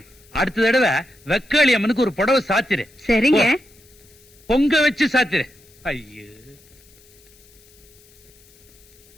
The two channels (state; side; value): noise; left; hiss, 28 dB below the sound